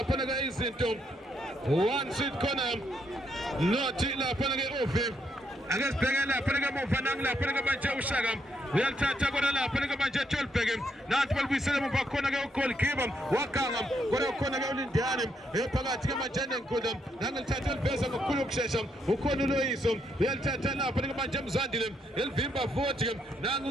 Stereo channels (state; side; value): normal; both; correlation 0.76